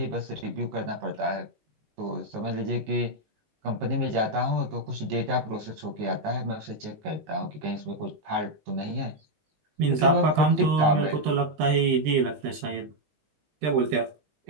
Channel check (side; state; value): left; late; 20 ms